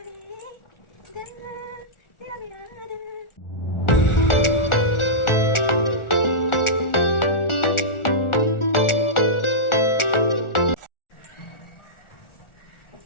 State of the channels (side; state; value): right; late; 1.4 ms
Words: दिल तेरा मेरा दिल